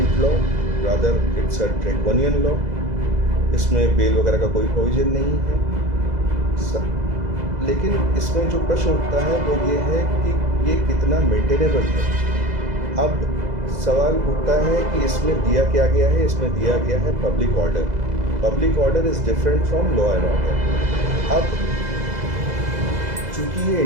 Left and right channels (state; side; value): late; left; 2.0 ms